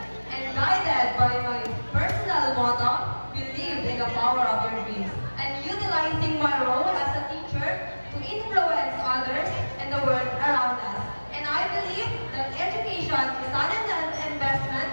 and guided by my personal motto, believe in the power of your dreams, and utilizing my role as a teacher to influence others and the world around us. And I believe that education is an investment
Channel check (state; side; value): inverted; both; correlation -1.00